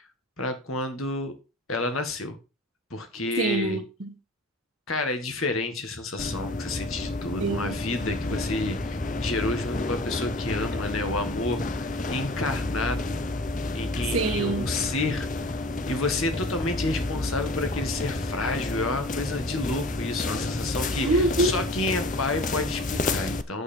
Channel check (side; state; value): both; normal; correlation 0.42